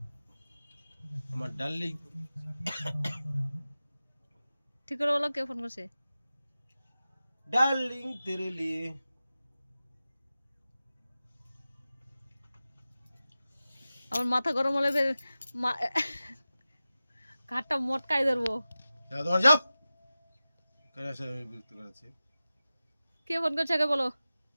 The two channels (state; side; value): inverted; both; correlation -0.95